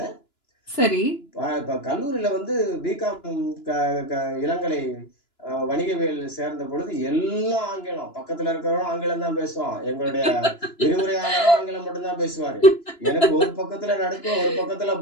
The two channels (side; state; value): right; late; 2.9 ms